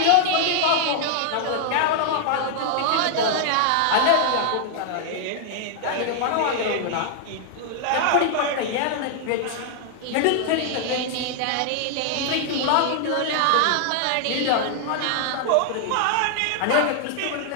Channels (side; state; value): both; different; correlation -0.01